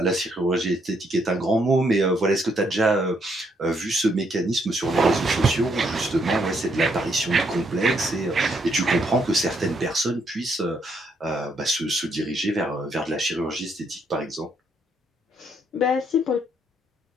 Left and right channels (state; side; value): normal; both; correlation 0.73